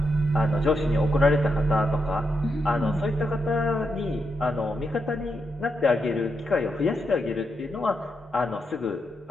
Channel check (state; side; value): normal; both; correlation 0.83